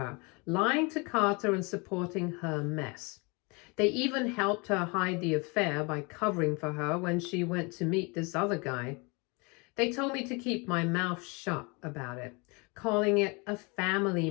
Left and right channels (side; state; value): right; quieter; 29.5 dB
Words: lying to Carter and supporting her mess. They even helped her hide the affair by covering for her when she went to meet this other guy. They told me to keep my mouth shut about it, calling it a family